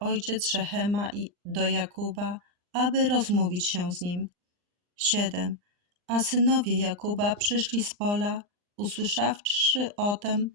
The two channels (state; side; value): late; left; 39 ms